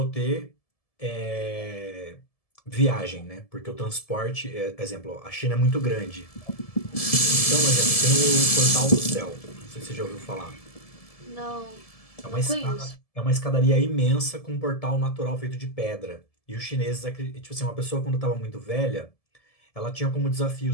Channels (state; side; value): late; right; 1.7 ms